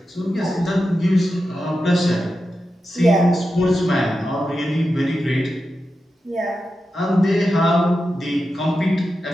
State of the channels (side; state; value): both; normal; correlation 0.90